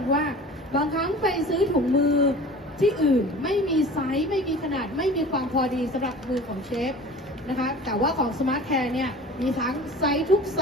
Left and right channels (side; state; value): both; normal; correlation 0.41